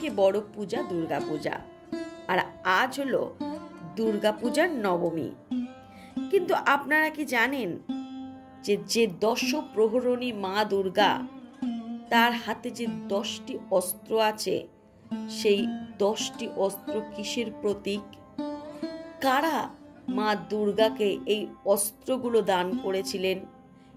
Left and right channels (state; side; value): identical; both; correlation 1.00